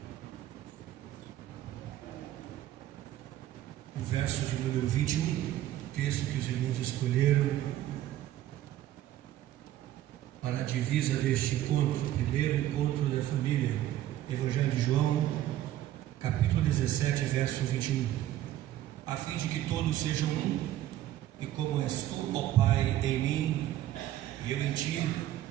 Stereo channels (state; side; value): quieter; left; 13.2 dB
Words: O verso de número 21, texto que os irmãos escolheram para a divisa deste encontro, primeiro encontro da família. Evangelho de João, capítulo 17, verso 21. A fim de que todos sejam um, e como és tu, ó Pai, em mim, e eu em ti,